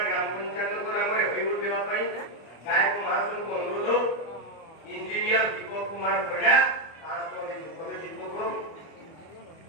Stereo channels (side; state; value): right; late; 24 ms